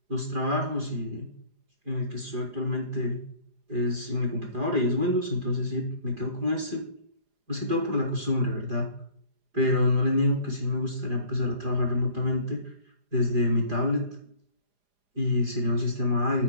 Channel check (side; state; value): left; late; 4.9 ms